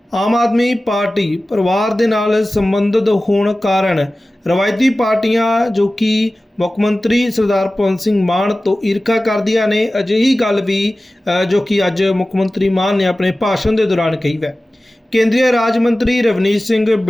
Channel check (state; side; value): normal; both; correlation 0.96